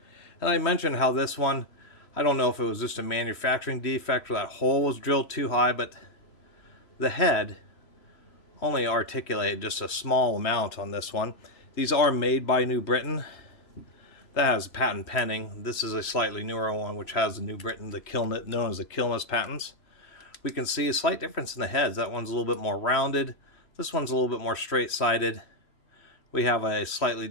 And I mentioned how this one, I don't know if it was just a manufacturing defect or that hole was drilled too high, but the head only articulated just a small amount on this one. These are made by New Britain. That has a patent pending. This is a slightly newer one which has the New Britain, known as the Catus patents. We can see a slight difference in the heads. That one's a little bit more rounded. This one's a little bit more straight-sided. We have a slightly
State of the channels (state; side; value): late; right; 3.1 ms